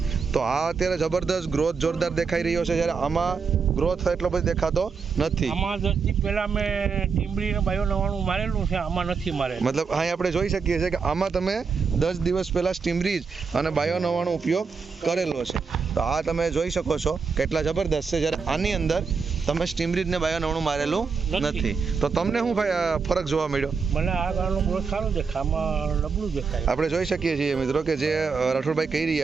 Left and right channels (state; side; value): quieter; left; 5.3 dB